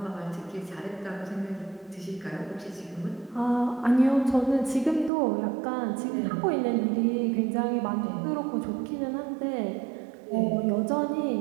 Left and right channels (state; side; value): drops out; left; at 5.1 s